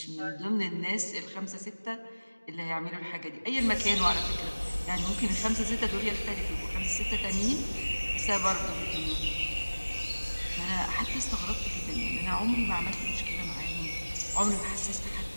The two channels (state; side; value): inverted; both; correlation -1.00